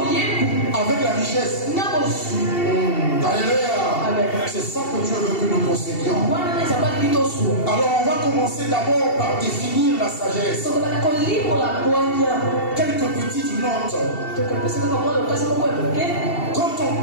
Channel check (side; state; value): right; late; 2.7 ms